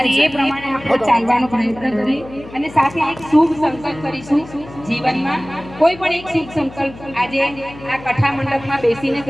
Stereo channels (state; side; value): noise; left; hum, 17 dB below the sound